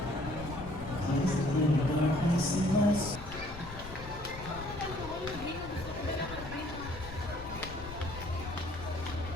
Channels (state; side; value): noise; left; rumble, 12 dB below the sound